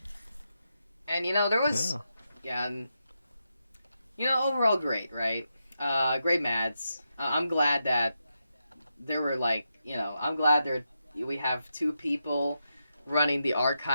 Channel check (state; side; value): inverted; both; correlation -0.86